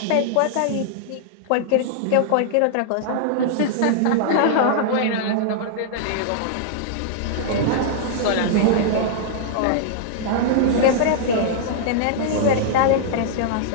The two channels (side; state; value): both; different; correlation -0.01